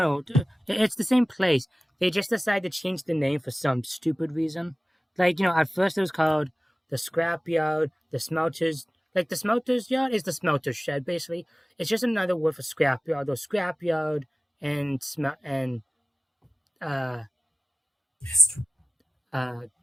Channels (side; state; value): both; normal; correlation 0.96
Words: it's the same place. They just decided to change the name for some stupid reason. Like, at first it was called the scrap yard, the smelters. Like, the smelters yard is the smelter shed, basically. It's just another word for scrap yard. Or scrap yard and uh